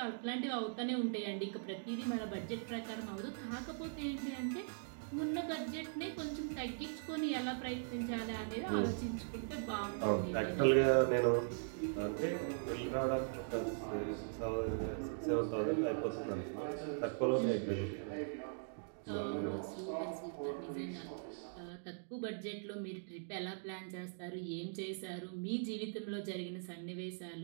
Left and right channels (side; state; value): left; silent; digital silence